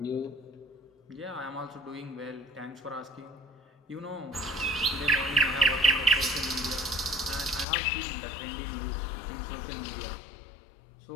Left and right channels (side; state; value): right; drops out; at 7.7 s